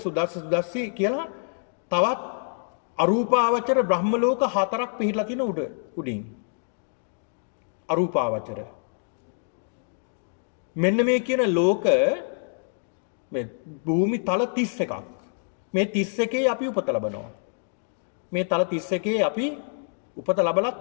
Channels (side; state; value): right; silent; digital silence